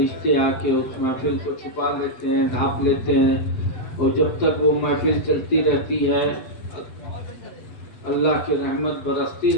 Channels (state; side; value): late; right; 7.7 ms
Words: آ کے اس محفل کو چھپا لیتے ہیں، ڈھانپ لیتے ہیں، اور جب تک وہ محفل چلتی رہتی ہے اللہ کی رحمت برستی